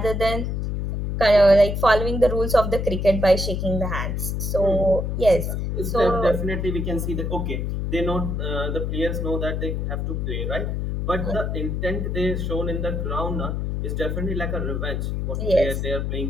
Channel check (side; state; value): left; noise; hum, 1 dB below the sound